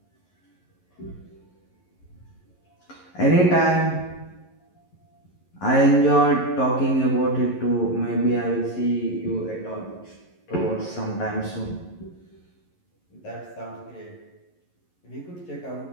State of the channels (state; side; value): late; right; 11 ms